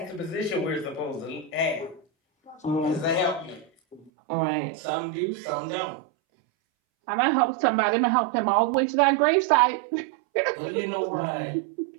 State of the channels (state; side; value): drops out; left; at 4.1 s